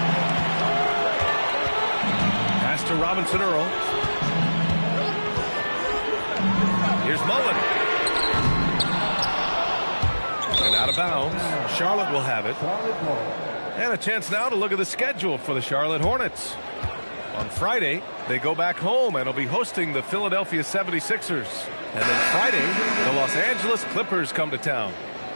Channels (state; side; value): inverted; both; correlation -1.00